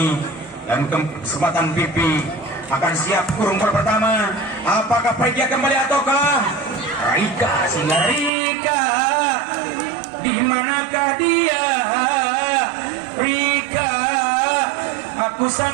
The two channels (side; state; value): left; drops out; at 8.3 s